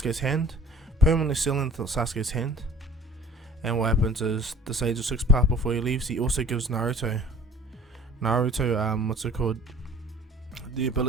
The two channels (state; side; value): normal; both; correlation 0.48